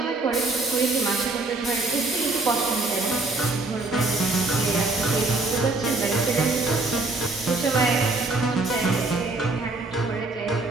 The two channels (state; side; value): quieter; left; 3.2 dB